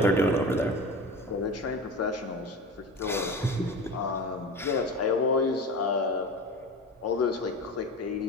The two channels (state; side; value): normal; both; correlation 0.30